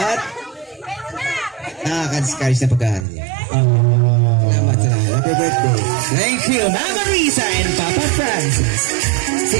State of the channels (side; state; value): left; drops out; at 3.1 s